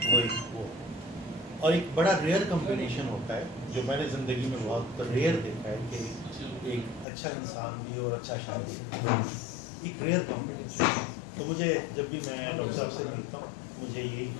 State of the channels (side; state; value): right; drops out; at 7.1 s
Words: وہ اور ایک بڑا ریئر کمبینیشن ہوتا ہے جو میں نے زندگی میں بہت ریئر دیکھا ہے کہ ایک اچھا انسان بھی اور اچھا شاعر بھی, ایک ریئر کمبینیشن. تو مجھے جب بھی میں ڈاکٹر صاحب سے ملتا ہوں مجھے یہی